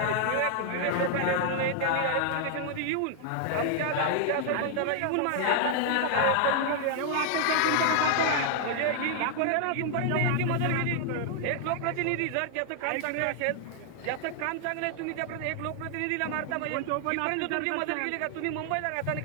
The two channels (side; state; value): both; different; correlation 0.00